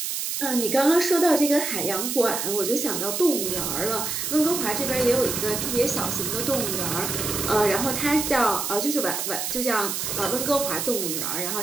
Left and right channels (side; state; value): right; noise; hiss, 2 dB below the sound